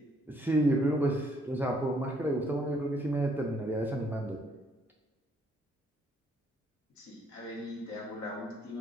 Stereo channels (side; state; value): both; normal; correlation 0.68